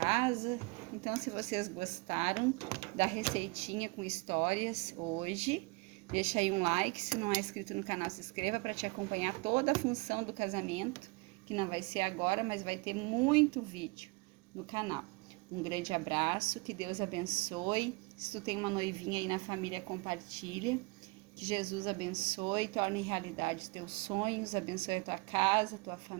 Então, se vocês gostaram da receitinha com histórias hoje, deixa aí um like. Se não é inscrito no canal, se inscreva para te acompanhar toda a função do casamento, que não vai ser agora, mas vai ter muito vídeo no canal. Um grande abraço, que Deus abençoe. Se tu tem uma noivinha aí na família, compartilha. Que Jesus abençoe, torne realidade os teus sonhos, abençoe a tua casa, a tua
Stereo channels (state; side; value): quieter; left; 27.1 dB